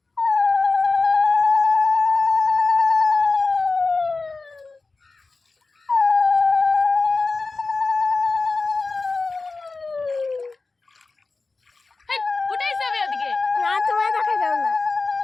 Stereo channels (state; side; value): quieter; right; 3.8 dB